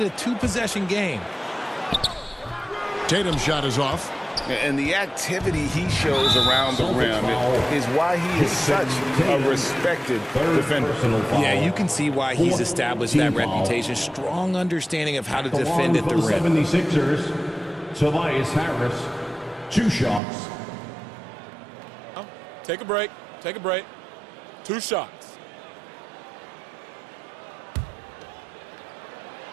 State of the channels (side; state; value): left; drops out; at 20.2 s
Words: a 2-possession game. Tatum's shot is off. And the activity he shows around the rim is why he is such a respected defender. Yeah, you can see why he's established that reputation. Strong understanding of how to defend at the rim. 76ers, Tobias Harris, 2 shots. Take a break. Take a break. 2 shots.